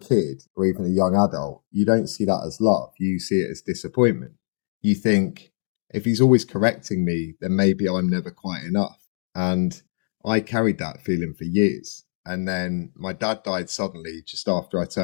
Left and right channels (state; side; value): silent; right; 62 dB below the other